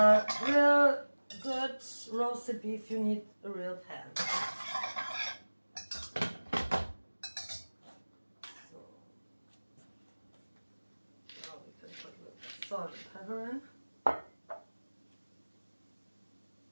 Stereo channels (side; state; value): both; inverted; correlation -1.00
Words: real good roasted beef you need a real pan. So now we can put a little salt and pepper in.